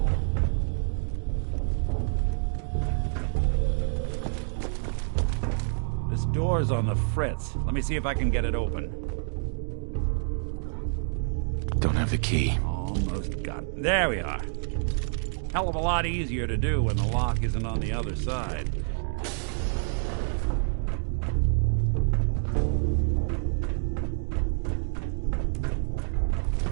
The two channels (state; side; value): silent; left; digital silence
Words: This door's on the fritz. Let me see if I can get it open. Don't have the key. Almost got it. There we are. Hell of a lot easier to do when the lock isn't on the other side.